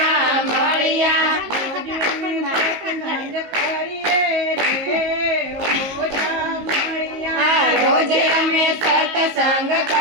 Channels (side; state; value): left; late; 19 ms